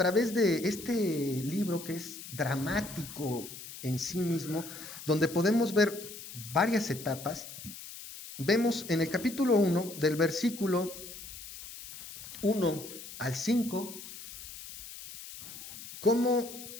de este libro que es dramático en sí mismo, donde podemos ver varias etapas. Vemos en el capítulo 1, del versículo 1 al 5, cómo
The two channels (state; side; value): noise; left; hiss, 13 dB below the sound